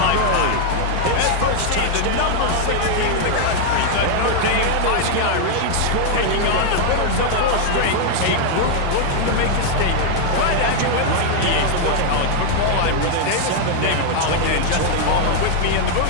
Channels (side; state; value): both; different; correlation 0.00